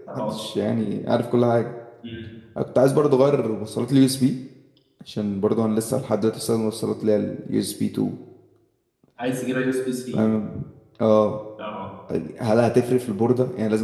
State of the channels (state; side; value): identical; both; correlation 1.00